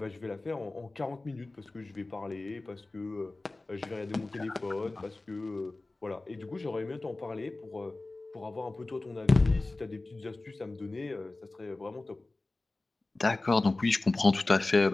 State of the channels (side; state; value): right; quieter; 3.1 dB